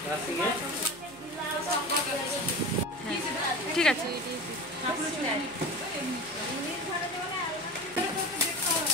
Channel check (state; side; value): noise; left; hum, 25 dB below the sound